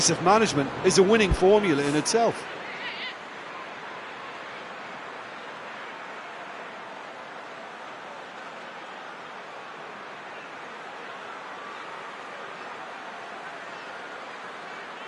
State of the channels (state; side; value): identical; both; correlation 1.00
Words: management is a winning formula in itself.